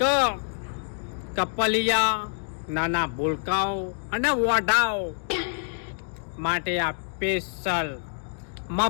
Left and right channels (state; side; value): silent; right; digital silence